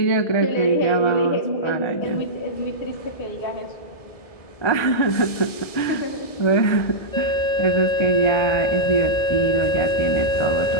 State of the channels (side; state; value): right; late; 1.7 ms